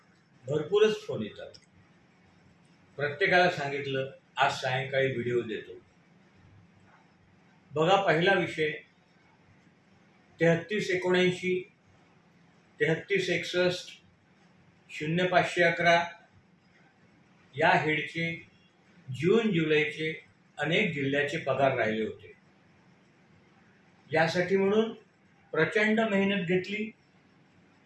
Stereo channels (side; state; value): both; identical; correlation 1.00